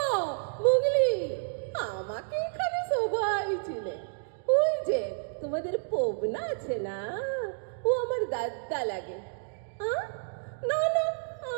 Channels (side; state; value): left; silent; digital silence